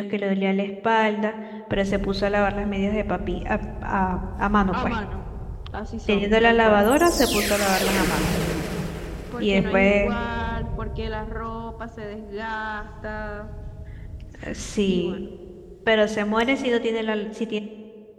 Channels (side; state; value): both; identical; correlation 1.00